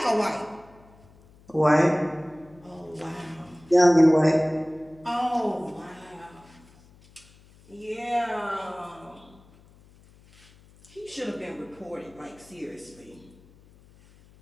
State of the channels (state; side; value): noise; left; hum, 26 dB below the sound